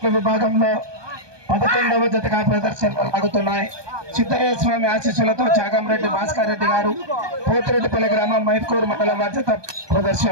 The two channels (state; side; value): late; left; 1.2 ms